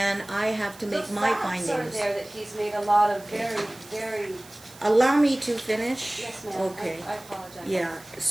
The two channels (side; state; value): right; noise; hiss, 21 dB below the sound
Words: I have to make my The facts are findings. there that he's made a lot of very, Allow me to finish? yes ma'am, Okay. I apologize. Yeah,